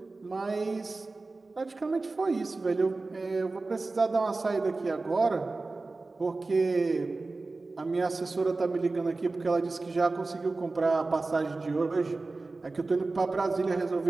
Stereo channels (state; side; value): quieter; left; 3.5 dB